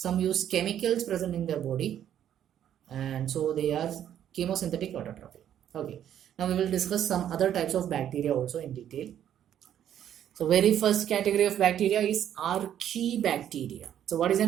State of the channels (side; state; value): left; quieter; 10.4 dB